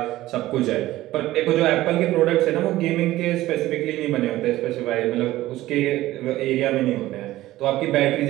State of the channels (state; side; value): quieter; left; 16.0 dB